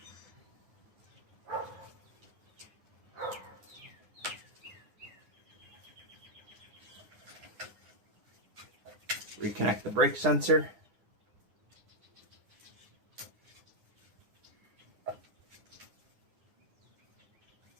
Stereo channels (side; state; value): left; late; 9.7 ms